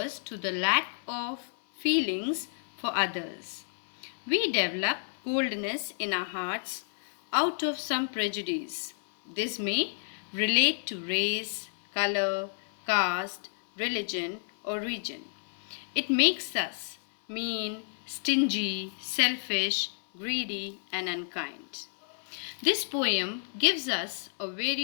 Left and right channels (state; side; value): silent; right; digital silence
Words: to the lack of feelings for others. We develop coldness in our hearts out of some prejudice. This may relate to race, color, caste, religion, or region. It makes us mean, stingy, selfish, greedy, and unkind. This poem gives us a